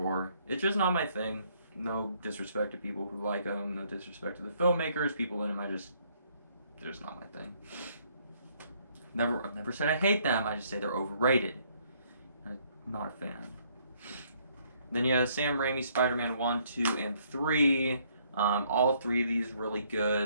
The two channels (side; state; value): both; inverted; correlation -0.66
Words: It's just not my thing. No disrespect to people who like them. No disrespect to the filmmakers. People in them, they're just not my thing. I've never said I hate them. I just say they're overrated. I'm not a fan. Then you have Sam Raimi, Spider-Man 1, 2, and 3. All 3 of these really